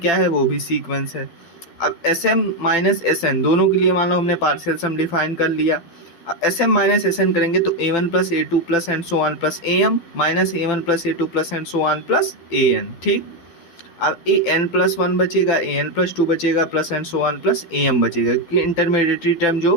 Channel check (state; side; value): late; right; 12 ms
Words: है? वो भी सीक्वेंस है। अब S M minus S N दोनों के लिए मान लो हमने पार्शियल सम डिफाइन कर लिया। S M minus S N करेंगे तो A one plus A two plus and so on plus A M minus A one plus A two plus and so on plus A N, ठीक? अब ए एन प्लस वन बचेगा, ए एन प्लस टू बचेगा, plus and so on plus A M बचेगा, क्योंकि इंटरमीडिएटरी टर्म